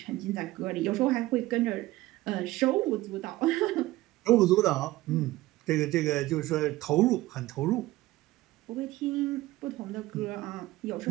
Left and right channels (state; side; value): quieter; left; 17.7 dB